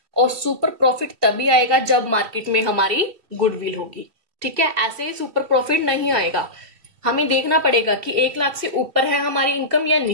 और सुपर प्रॉफिट तभी आएगा जब मार्केट में हमारी गुडविल होगी। ठीक है, ऐसे ही सुपर प्रॉफिट नहीं आएगा। हमें देखना पड़ेगा कि 1 लाख से ऊपर है हमारी इनकम या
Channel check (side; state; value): left; late; 2.9 ms